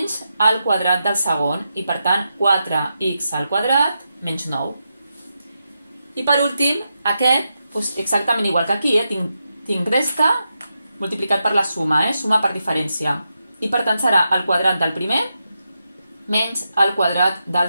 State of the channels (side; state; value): both; inverted; correlation -0.87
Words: el quadrat del segon, i per tant, 4x al quadrat menys 9. I per últim, aquest, exactament igual que aquí, tinc resta multiplicat per la suma, suma per diferència. I per tant, serà el quadrat del primer menys el quadrat del